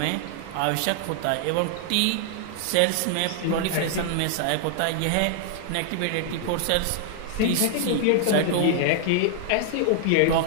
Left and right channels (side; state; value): both; different; correlation 0.00